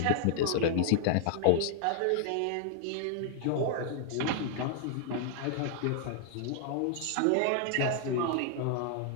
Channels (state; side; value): different; both; correlation 0.00